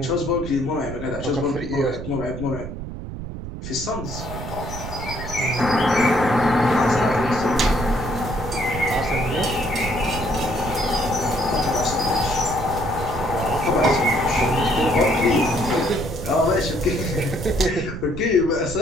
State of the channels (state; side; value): noise; right; rumble, 9 dB below the sound